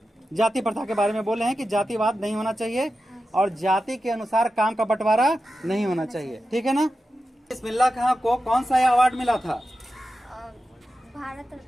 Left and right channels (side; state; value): both; normal; correlation 0.92